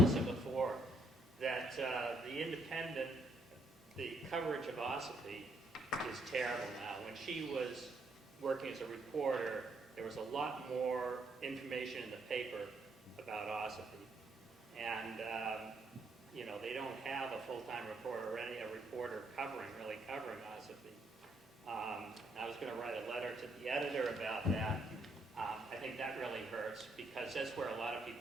before, that the coverage of Ossipee is terrible now. When she was working as a reporter, there was a lot more information in the paper about Ossipee. And, they don't have a full-time reporter or a reporter really covering Ossipee. I was going to write a letter to the editor about that. I think think that really hurts, because that's where a lot of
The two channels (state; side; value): normal; both; correlation 0.73